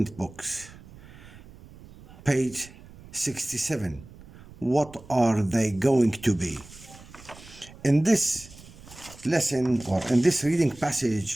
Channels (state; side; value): noise; right; rumble, 20 dB below the sound